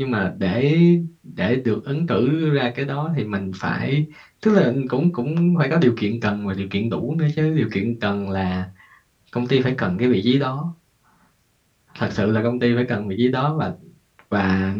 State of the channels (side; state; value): both; identical; correlation 1.00